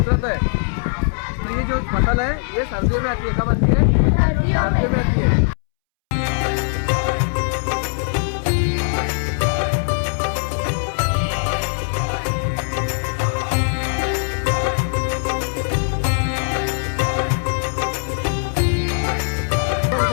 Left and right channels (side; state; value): right; silent; 65 dB below the other